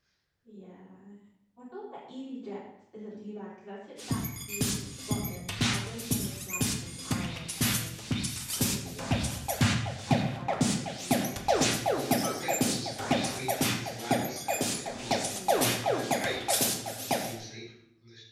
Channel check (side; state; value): both; identical; correlation 1.00